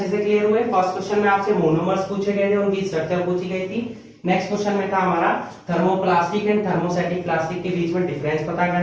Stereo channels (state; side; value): identical; both; correlation 1.00